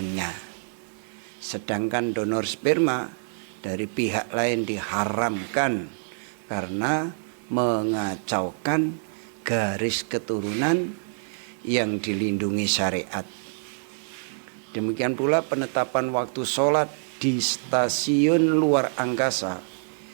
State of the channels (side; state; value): left; silent; 61 dB below the other